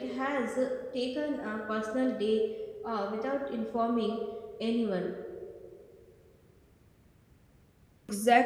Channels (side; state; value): both; identical; correlation 1.00